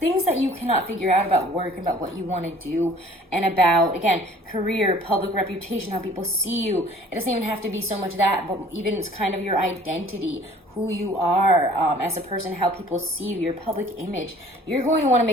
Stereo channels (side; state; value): both; normal; correlation 0.52